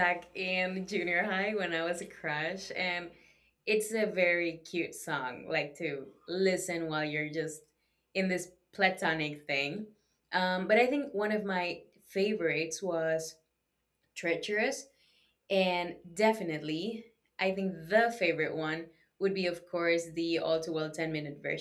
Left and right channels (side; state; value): both; identical; correlation 1.00